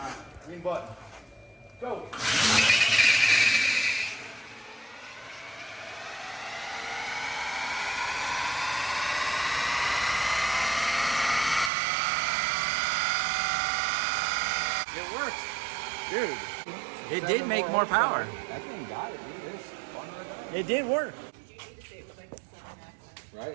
green button. Go. It worked. Dude. It did make more power. That thing got it, dude. It's fun right It did work. now.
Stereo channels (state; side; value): drops out; left; at 11.7 s